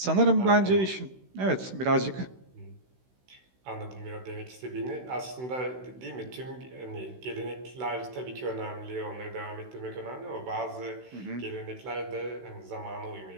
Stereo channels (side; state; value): left; late; 16 ms